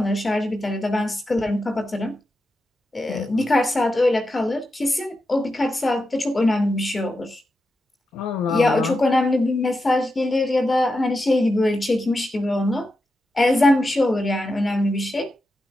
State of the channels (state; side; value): normal; both; correlation 0.89